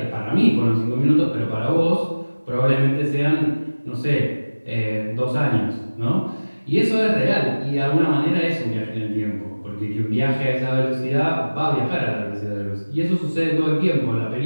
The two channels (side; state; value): both; inverted; correlation -1.00